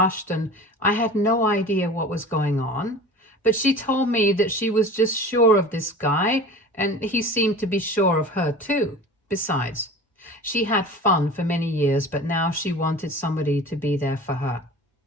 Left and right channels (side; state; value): both; normal; correlation 0.38